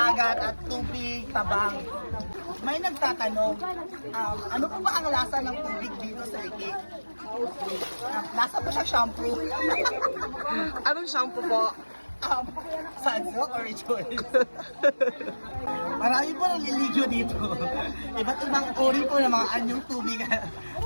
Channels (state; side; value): inverted; both; correlation -1.00